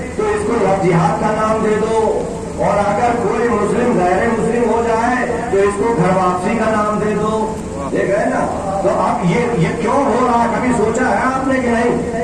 تو اس کو لو جہاد کا نام دے دو، اور اگر کوئی مسلم غیر مسلم ہو جائے تو اس کو گھر واپسی کا نام دے دو۔ دیکھ رہے نا؟ تو اب یہ کیوں ہو رہا ہے؟ کبھی سوچا ہے آپ نے کہ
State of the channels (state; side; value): identical; both; correlation 1.00